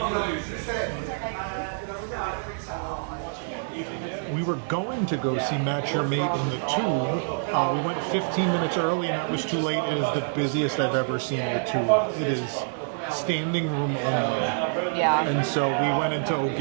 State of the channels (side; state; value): left; silent; digital silence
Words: We were going to go see Match Your Mate in the Tube. We went 15 minutes early, and that was too late. It is the busiest I've ever seen the Tube. It is standing room only. Yeah. And so we went into